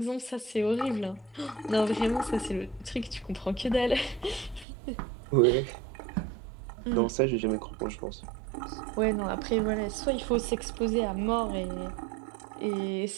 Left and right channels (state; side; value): drops out; left; at 4.7 s